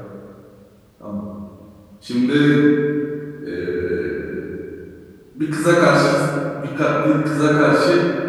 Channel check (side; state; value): both; identical; correlation 1.00